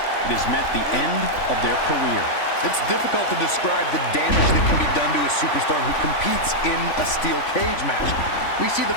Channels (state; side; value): late; right; 3.5 ms